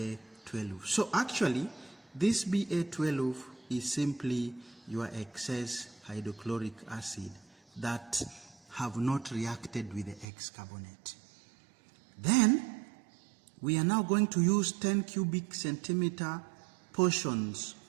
So actually, this Ba12 is simply your excess hydrochloric acid that have not reacted with the X carbonate. Then, we are now going to use 10 cubic centimeter portions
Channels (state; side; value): drops out; left; at 10.2 s